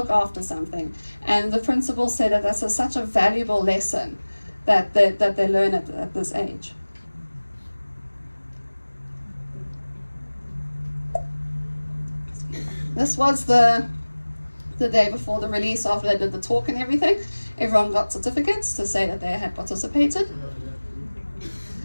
after something. And the principal said that that's such a valuable lesson that they learn at this age. This was the day before the release, after they did the talk and everything. Everyone got certificates to say that they had participated.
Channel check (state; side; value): inverted; both; correlation -1.00